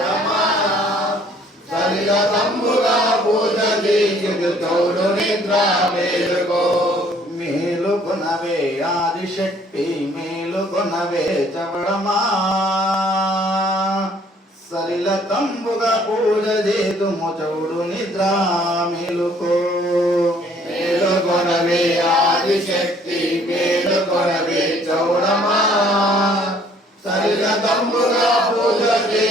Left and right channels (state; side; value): normal; both; correlation 0.60